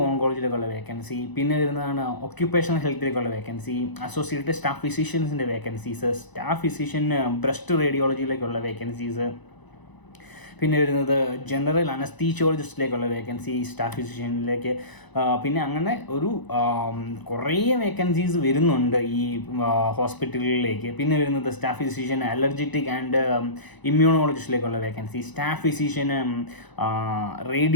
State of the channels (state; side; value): late; right; 1.0 ms